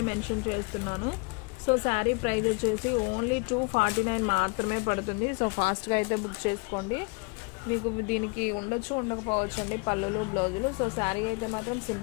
మెన్షన్ చేస్తున్నాను. సో శారీ ప్రైస్ వచ్చేసి ఓన్లీ 249 మాత్రమే పడుతుంది. సో ఫాస్ట్గా అయితే బుక్ చేసుకోండి. మీకు దీనికి ఉండొచ్చు ఉండకపోవచ్చు అండి పళ్ళులు బ్లౌజులు. సో శారీ అయితే మాత్రం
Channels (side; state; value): right; quieter; 30.9 dB